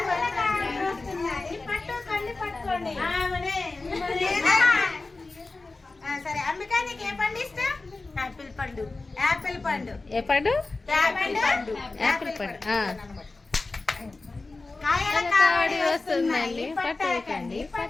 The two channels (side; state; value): right; quieter; 3.5 dB